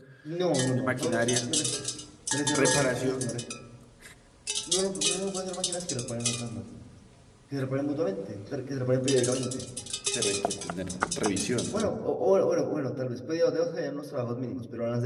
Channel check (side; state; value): both; identical; correlation 1.00